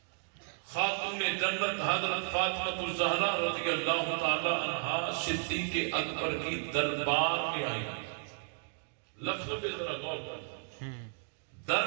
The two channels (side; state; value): left; silent; 55 dB below the other